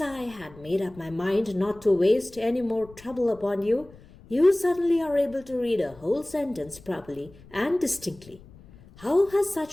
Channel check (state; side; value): noise; left; rumble, 22 dB below the sound